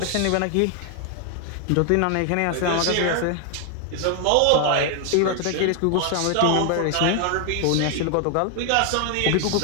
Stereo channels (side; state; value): both; different; correlation 0.00